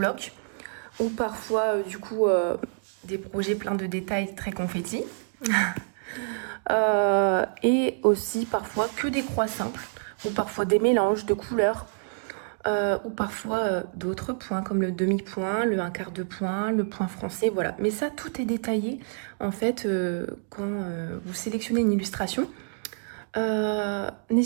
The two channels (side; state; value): left; silent; digital silence